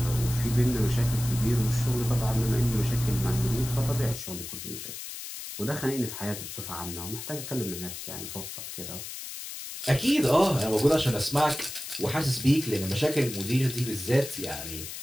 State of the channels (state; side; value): noise; left; hiss, 9 dB below the sound